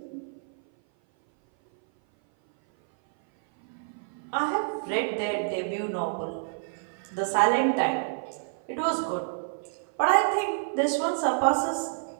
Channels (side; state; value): left; silent; 56 dB below the other